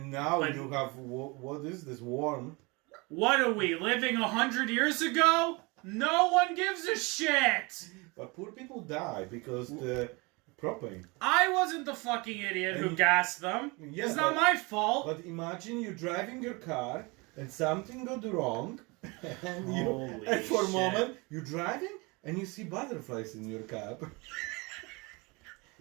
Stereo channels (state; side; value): quieter; left; 26.9 dB